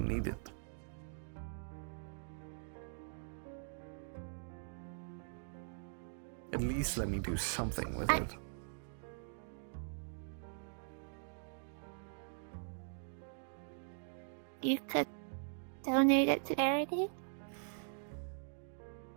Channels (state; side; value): silent; left; digital silence